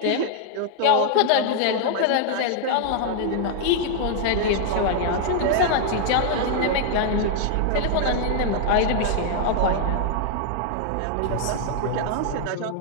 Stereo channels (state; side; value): different; both; correlation -0.01